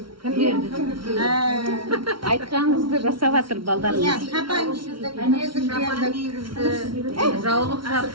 Кім берді? Айтқаныңызды жасап жатыр балдарыңыз. Жаулық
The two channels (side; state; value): left; late; 0.74 ms